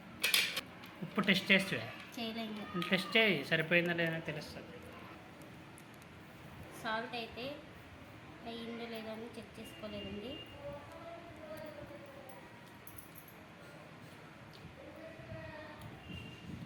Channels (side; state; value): both; identical; correlation 1.00